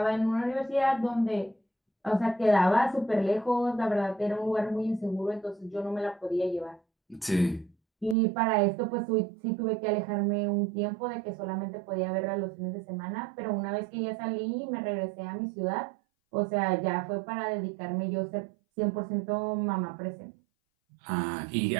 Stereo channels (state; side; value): drops out; left; at 8.2 s